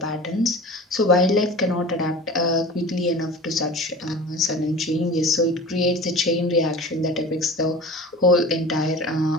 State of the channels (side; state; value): both; normal; correlation 0.36